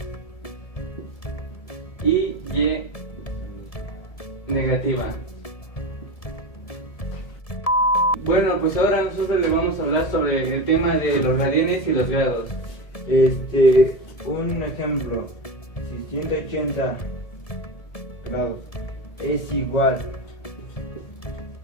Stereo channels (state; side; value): late; right; 1.7 ms